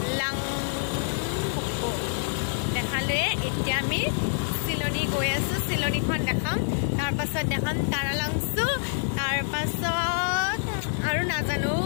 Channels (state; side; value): silent; right; digital silence